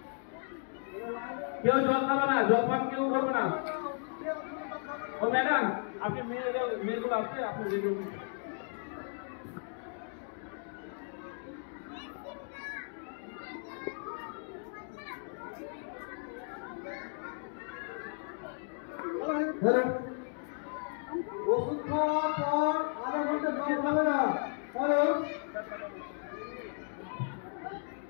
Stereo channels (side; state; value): right; silent; 55 dB below the other